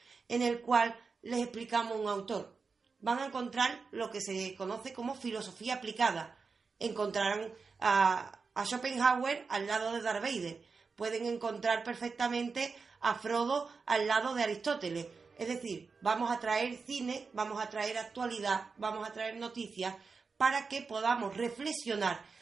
en el cual les explicamos un autor, van a encontrar lo que se conoce como filosofía aplicada. Encontrarán a Schopenhauer al lado de Darth Vader, pueden encontrar perfectamente a Frodo al lado de Aristóteles. Es decir, vamos a traer cine, vamos a traer actualidad, vamos a traer noticias para que podamos reflexionar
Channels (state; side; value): quieter; left; 4.8 dB